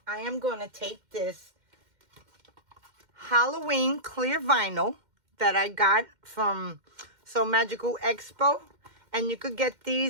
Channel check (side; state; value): left; late; 2.1 ms